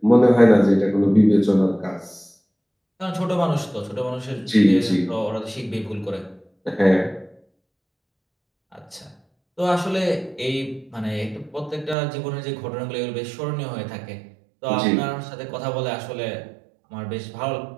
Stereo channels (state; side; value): drops out; left; at 12.0 s